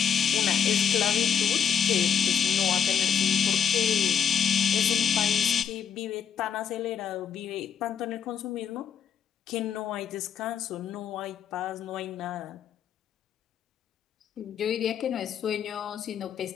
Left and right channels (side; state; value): right; quieter; 8.0 dB